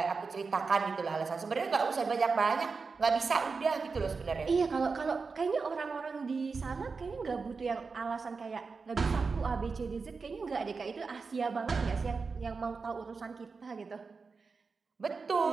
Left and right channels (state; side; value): quieter; left; 4.7 dB